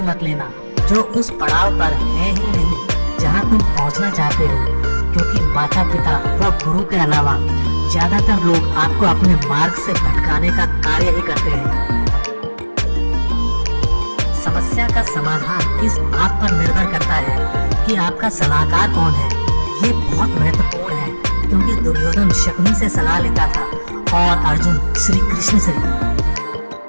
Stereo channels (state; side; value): inverted; both; correlation -1.00